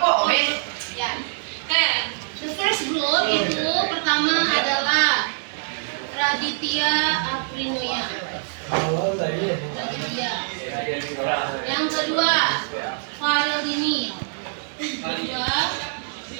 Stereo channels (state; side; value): silent; left; digital silence